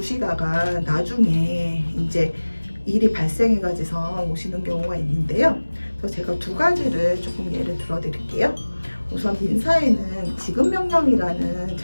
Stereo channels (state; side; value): inverted; both; correlation -1.00